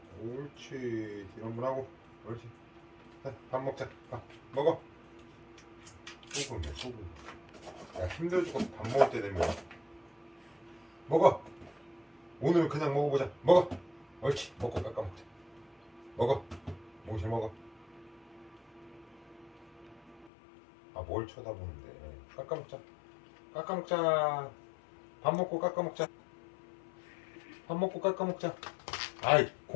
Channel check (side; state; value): right; drops out; at 20.3 s